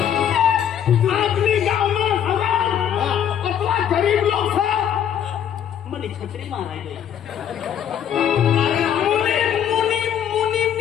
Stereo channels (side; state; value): right; quieter; 9.4 dB